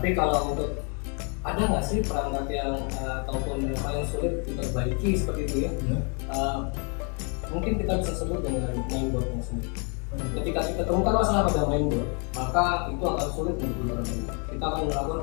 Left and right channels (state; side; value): quieter; right; 37.9 dB